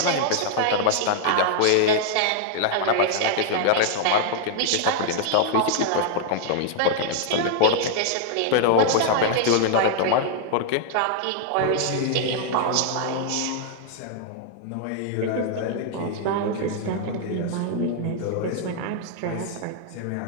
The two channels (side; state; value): both; different; correlation 0.00